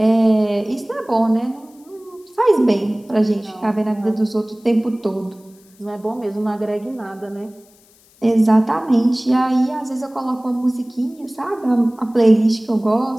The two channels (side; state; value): left; noise; hiss, 30 dB below the sound